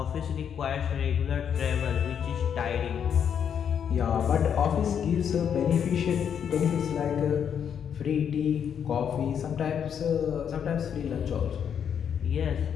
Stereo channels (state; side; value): quieter; right; 8.1 dB